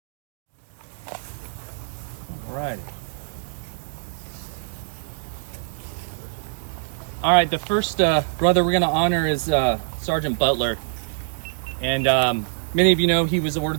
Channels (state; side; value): silent; left; digital silence